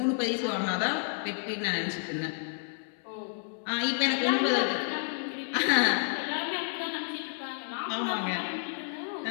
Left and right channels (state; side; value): silent; right; 57 dB below the other